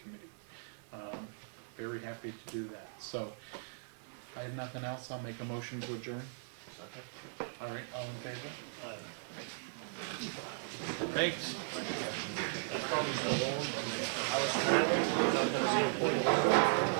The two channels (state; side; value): silent; left; digital silence